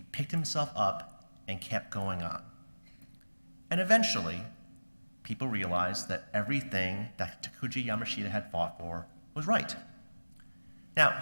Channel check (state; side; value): inverted; both; correlation -1.00